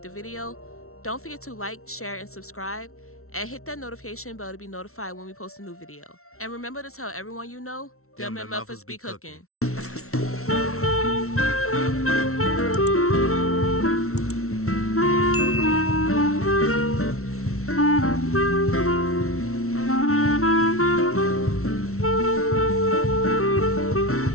the video. Don't forget to like, share, and subscribe, and hit that notification bell to be notified when we post a new video. And remember to tell everyone you know, them MFers be cooking.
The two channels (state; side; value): late; right; 0.63 ms